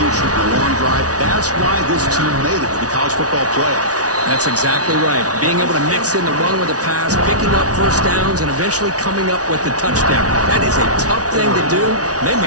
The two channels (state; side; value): late; left; 0.68 ms